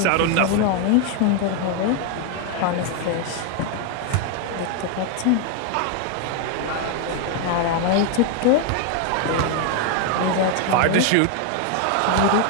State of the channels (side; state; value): both; different; correlation 0.01